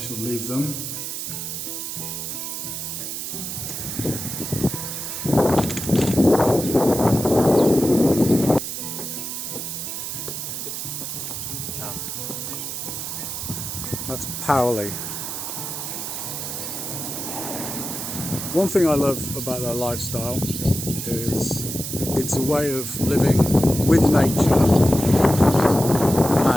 leave them. That's Powley. One thing I love about their lifestyle is it's a way of living with nature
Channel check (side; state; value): right; noise; hiss, 5 dB below the sound